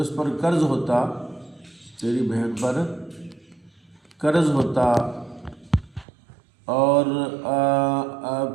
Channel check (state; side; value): drops out; left; at 6.1 s